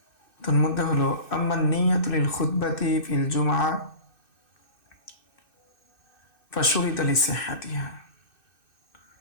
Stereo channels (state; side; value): late; right; 2.6 ms